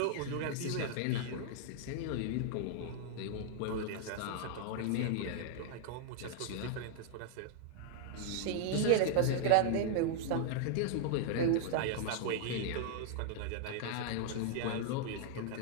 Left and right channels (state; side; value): different; both; correlation -0.01